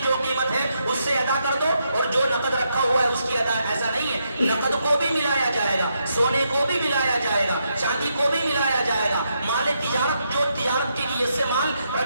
جو قیمت ہے اس سے ادا کر دو اور جو نقد رکھا ہوا ہے اس کی ادا، ایسا نہیں ہے، نقد کو بھی ملایا جائے گا، سونے کو بھی ملایا جائے گا، چاندی کو بھی ملایا جائے گا، مال تجارت جو تجارت کی نیت سے مال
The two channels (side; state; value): both; inverted; correlation -0.80